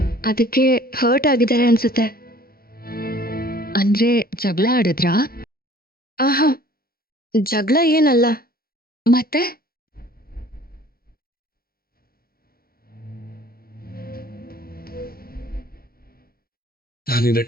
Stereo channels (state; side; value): late; right; 0.44 ms